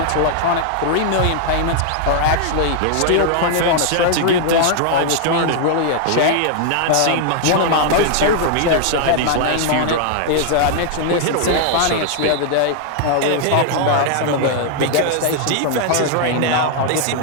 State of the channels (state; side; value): different; both; correlation 0.00